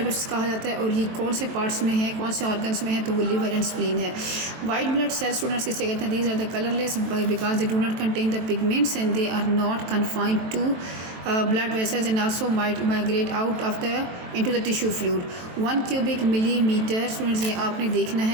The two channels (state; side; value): late; left; 23 ms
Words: कहा जाता है, और ये कौन से पार्ट्स में है, कौन से ऑर्गन्स में है, तो वो लिवर एंड स्प्लीन है। वाइट ब्लड सेल्स स्टूडेंट्स किसे कहते हैं, these are the colourless because they do not contain the pigments and they are not confined to blood vessels and also migrate out of into the tissue fluid। 1 cubic millimeter students ये आपने देखना